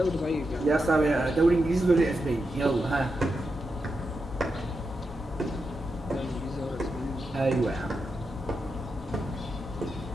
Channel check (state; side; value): normal; both; correlation 0.87